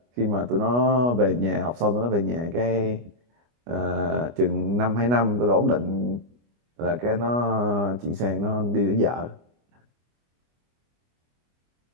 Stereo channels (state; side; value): late; left; 25 ms